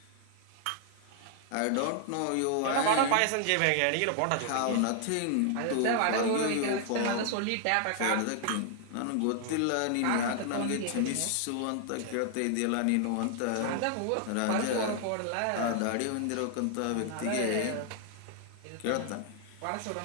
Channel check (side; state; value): both; different; correlation 0.00